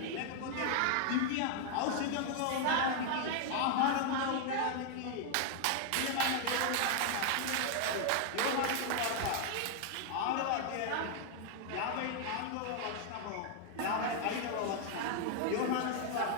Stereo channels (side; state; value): both; different; correlation 0.00